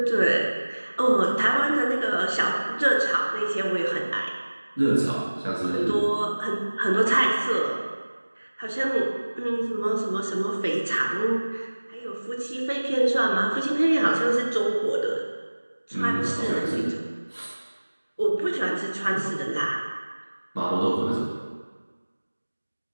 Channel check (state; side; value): inverted; both; correlation -1.00